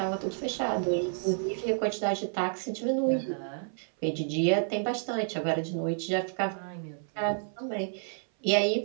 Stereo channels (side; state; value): left; silent; 58 dB below the other